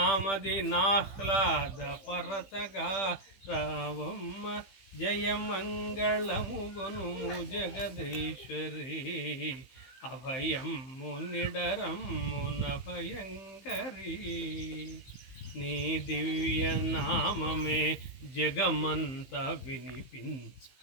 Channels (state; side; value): late; right; 15 ms